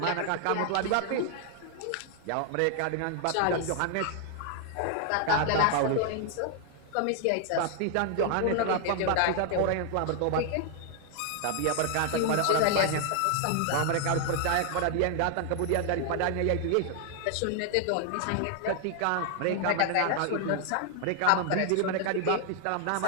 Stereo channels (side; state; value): both; different; correlation 0.00